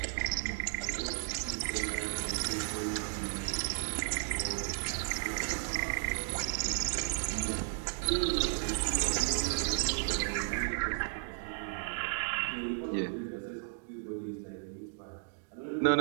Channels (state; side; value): silent; left; digital silence